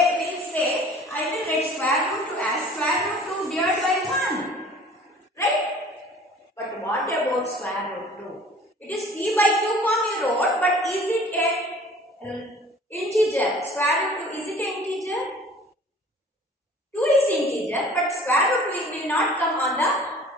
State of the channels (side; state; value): both; normal; correlation 0.48